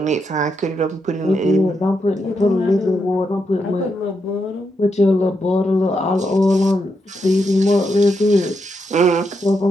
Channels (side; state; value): both; normal; correlation 0.82